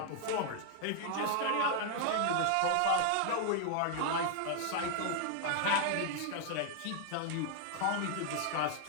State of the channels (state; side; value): different; both; correlation 0.00